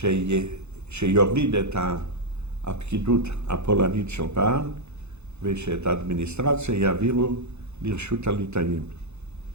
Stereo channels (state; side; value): late; left; 0.81 ms